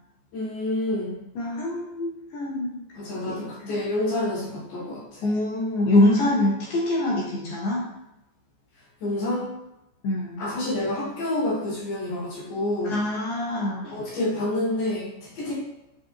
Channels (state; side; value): late; right; 14 ms